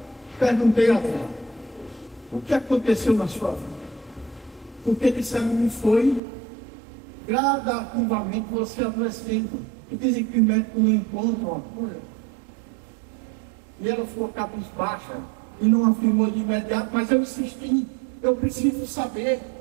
perguntei a ela: o que aconteceu na sua vida? Porque disseram-me foi gradativamente você adoecendo. E dizem que o médico não encontra uma cura. E ela ficou cabisbaixa e não afirmou de imediato, mas eu insisti: eu preciso saber.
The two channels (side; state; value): left; drops out; at 6.2 s